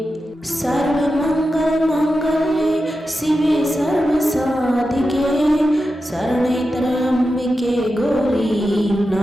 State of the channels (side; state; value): both; normal; correlation 0.91